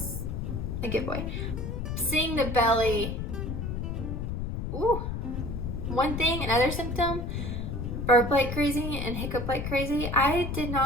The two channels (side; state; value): left; noise; rumble, 4 dB below the sound